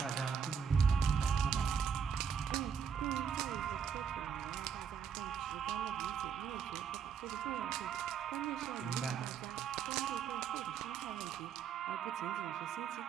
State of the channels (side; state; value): left; quieter; 7.2 dB